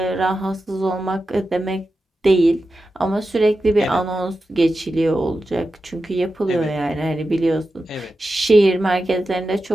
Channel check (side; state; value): both; normal; correlation 0.91